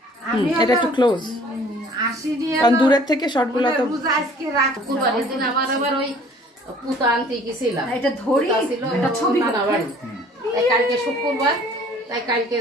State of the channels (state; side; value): normal; both; correlation 0.53